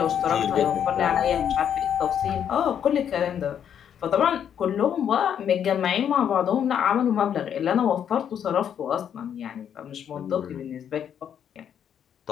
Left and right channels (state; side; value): quieter; right; 8.8 dB